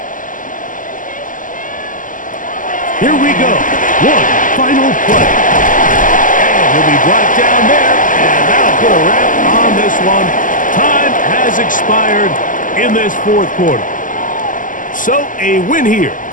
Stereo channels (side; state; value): right; late; 0.38 ms